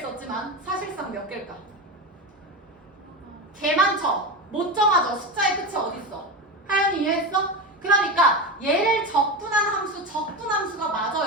썼지만 사실상 몇 개일까? 개 많죠? 못 정하죠? 숫자의 끝이 어딨어? 하연이 이해했어? 그러니까 얘를 적분한 함수, 적분함수가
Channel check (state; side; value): normal; both; correlation 0.20